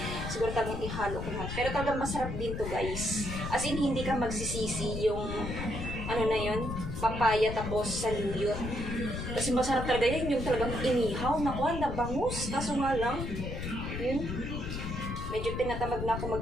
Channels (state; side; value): noise; left; rumble, 5 dB below the sound